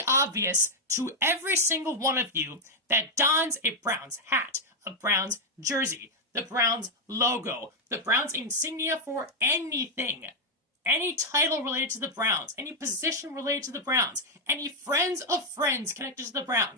obvious to every single one of you that dons a Browns hat, a Browns jersey, the Browns logo, the Browns insignia for anything. Any title related to the Browns, any position related to the Browns, any friends of friends connected to the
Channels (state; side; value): normal; both; correlation 0.01